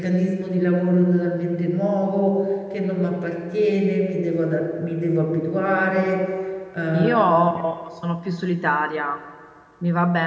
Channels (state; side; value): identical; both; correlation 1.00